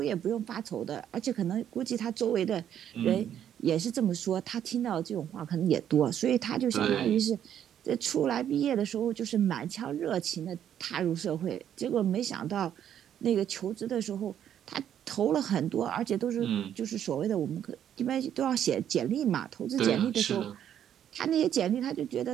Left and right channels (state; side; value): quieter; left; 9.9 dB